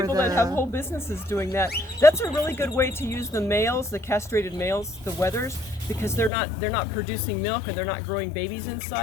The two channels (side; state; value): right; drops out; at 6.3 s